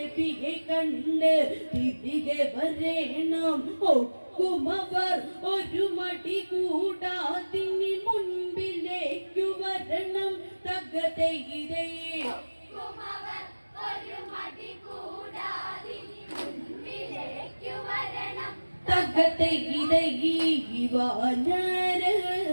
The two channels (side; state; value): both; inverted; correlation -1.00